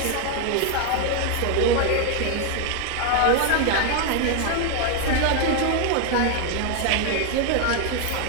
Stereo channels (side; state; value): both; different; correlation 0.01